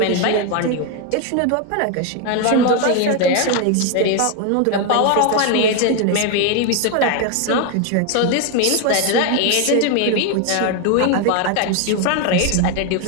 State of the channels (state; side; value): different; both; correlation 0.01